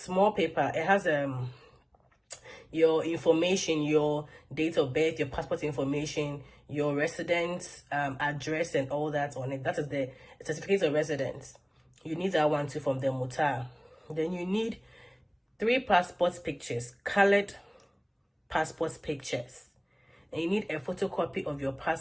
paper. It has your information, your date of birth, your passport information, your residence address and all that on it. That is the certificate of residence. You need that one too from the mutar. Then you need 3 passport pictures, colored passport pictures. And you need a photocopy of your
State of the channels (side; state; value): both; identical; correlation 1.00